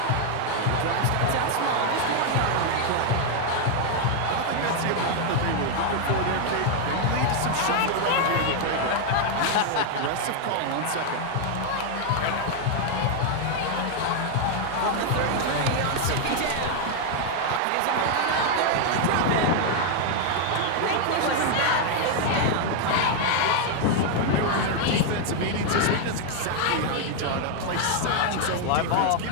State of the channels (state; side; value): different; both; correlation 0.00